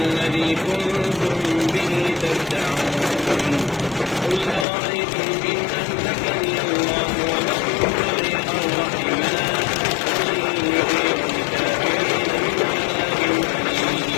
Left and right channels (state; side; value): drops out; right; at 4.7 s